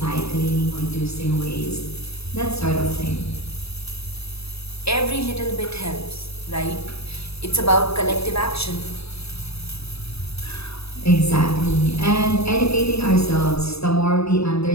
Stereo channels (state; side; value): late; right; 0.78 ms